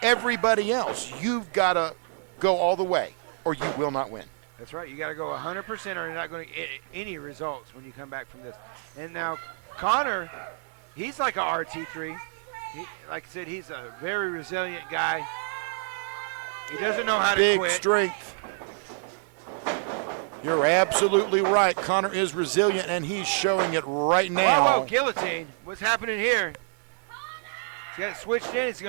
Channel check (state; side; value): silent; left; 60 dB below the other